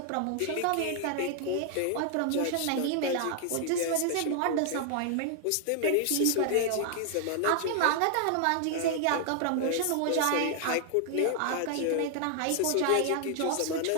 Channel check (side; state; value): both; different; correlation 0.00